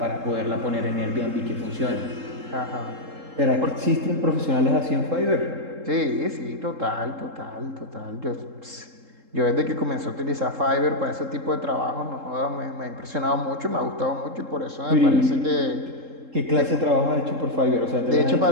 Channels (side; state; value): left; late; 3.7 ms